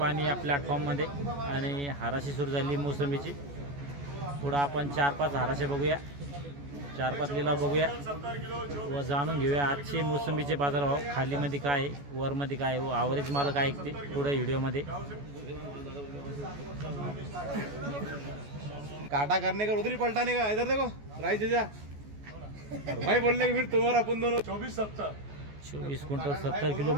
या प्लॅटफॉर्ममध्ये. आणि हाराशी सुरू झाली मोसंबीची. पुढं आपण 4-5 हाराशे बघूया, 4-5 लिलाव बघूया व जाणून घेऊया आजचे मोसंबीचे बाजारभाव. खालीमध्ये काय आहे, वरमध्ये काय आहे व ॲव्हरेज माल काय ऐकते पुढे व्हिडिओमध्ये. काटा करने का उधर ही पलटाने का, इधर देखो राइस जा भाई बोलने के फिर तुम्हारा अपन दोनों 24 क्विंटल 70 किलो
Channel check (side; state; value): left; late; 14 ms